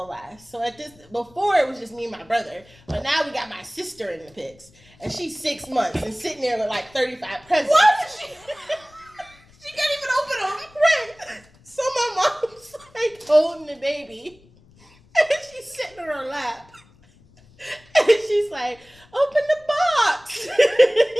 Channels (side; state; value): left; noise; rumble, 28 dB below the sound